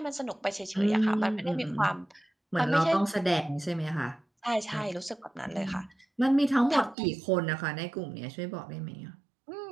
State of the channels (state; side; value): drops out; left; at 7.0 s